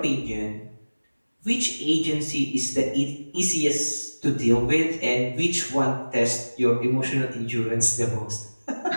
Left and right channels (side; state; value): both; inverted; correlation -1.00